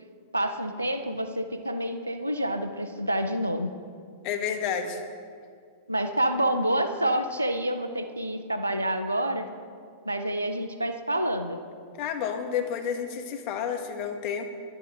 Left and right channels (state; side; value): inverted; both; correlation -0.65